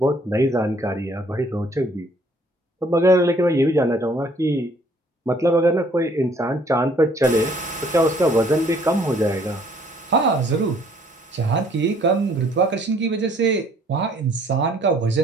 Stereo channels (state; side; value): normal; both; correlation 0.60